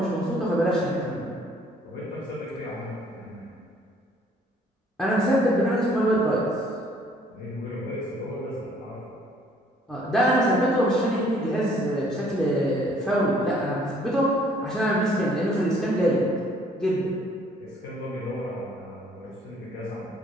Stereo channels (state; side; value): normal; both; correlation 0.61